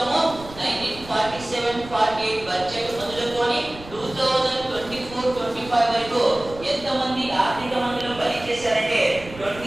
1947-48 బడ్జెట్ మొదలుకొని 2024-25 వరకు ఎంతమంది ఆర్థిక మంత్రులు పని చేశారంటే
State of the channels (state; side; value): noise; right; rumble, 16 dB below the sound